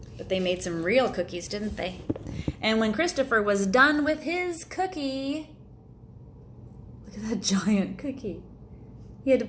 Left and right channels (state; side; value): identical; both; correlation 1.00